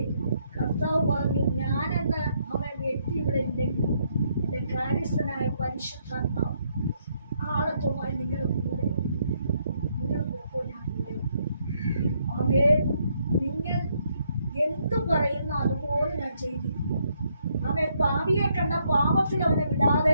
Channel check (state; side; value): inverted; both; correlation -0.73